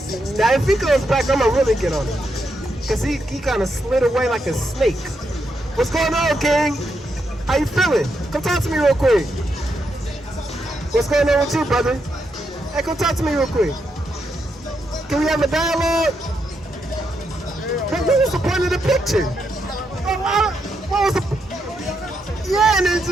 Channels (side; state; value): both; normal; correlation 0.81